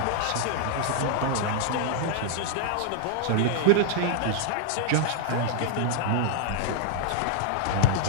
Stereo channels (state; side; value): different; both; correlation -0.01